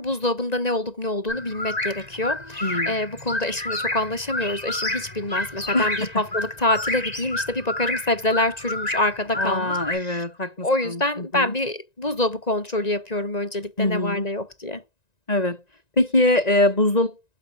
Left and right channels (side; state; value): right; late; 1.9 ms